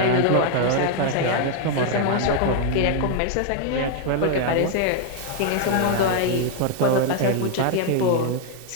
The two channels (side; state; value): both; different; correlation 0.00